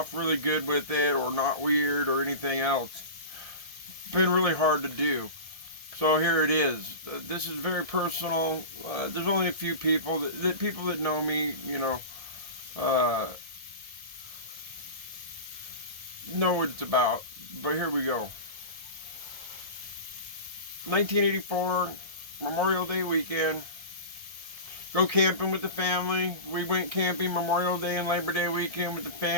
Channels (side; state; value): left; late; 1.6 ms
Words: really good with it or not weird or anything else. It's been really hard to do. So here it is. This is very personal. There's only a few people that know me, know what it's about. But here we go. 1984, Memorial Day weekend. Go camping with the family. We went camping Memorial Day and Labor Day weekend with the